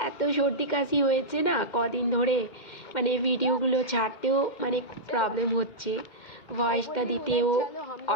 এত সর্দি কাশি হয়েছে না কদিন ধরে, মানে ভিডিওগুলো ছাড়তেও মানে খুব প্রবলেম হচ্ছে, ভয়েসটা দিতেও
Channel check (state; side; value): late; right; 2.1 ms